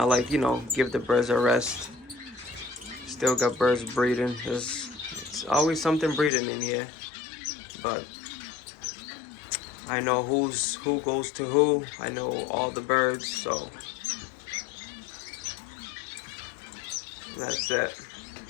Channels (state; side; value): drops out; right; at 6.3 s